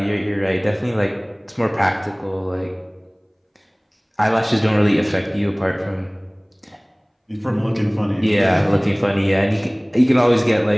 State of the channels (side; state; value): both; identical; correlation 1.00